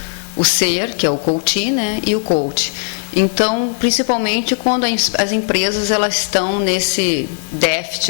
o ser, que é o coach, né, e o coach. Então, principalmente quando as empresas elas estão nesse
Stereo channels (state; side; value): silent; right; digital silence